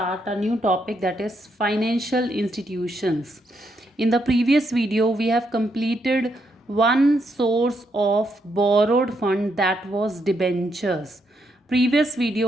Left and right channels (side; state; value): both; normal; correlation 0.78